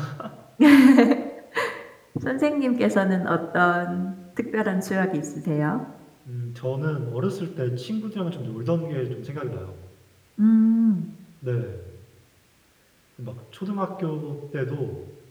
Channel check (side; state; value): both; identical; correlation 1.00